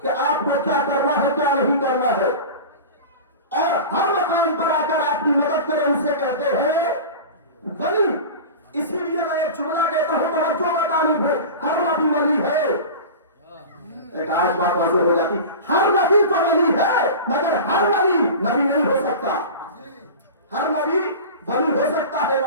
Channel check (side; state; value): both; inverted; correlation -0.31